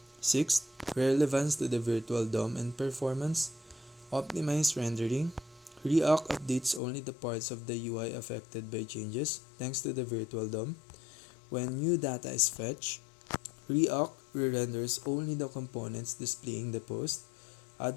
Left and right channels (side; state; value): right; drops out; at 6.8 s